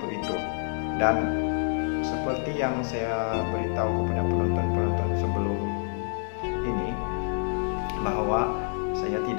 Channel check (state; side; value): silent; right; 59 dB below the other